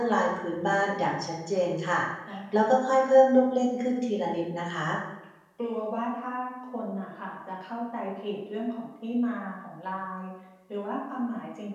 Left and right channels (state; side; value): identical; both; correlation 1.00